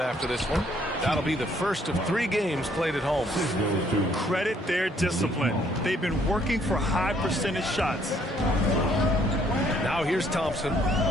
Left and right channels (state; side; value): normal; both; correlation 0.66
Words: after this one. That'll be the first of 3 games played at home. Credit their discipline. They've been working for high percentage shots. Now here's Thompson.